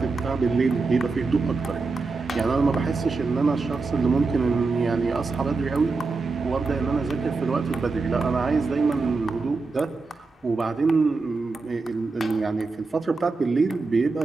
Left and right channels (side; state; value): left; quieter; 4.0 dB